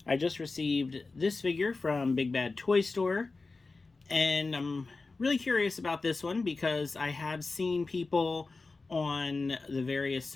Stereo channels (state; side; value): quieter; right; 3.8 dB